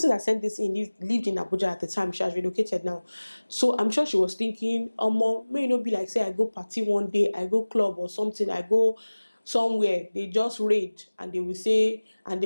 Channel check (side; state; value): both; inverted; correlation -1.00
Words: that sent this in lived in Abuja at the time. She has relocated now, so I'm sure she was thinking, may not be like, say I go party one day, I go club or something, I go somewhere, they just raid and they will say,